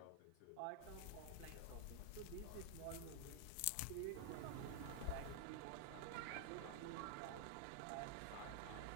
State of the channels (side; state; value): both; different; correlation 0.00